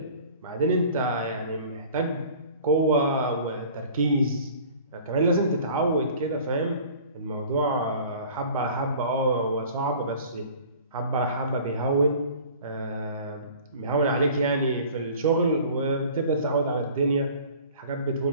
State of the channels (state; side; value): inverted; both; correlation -0.47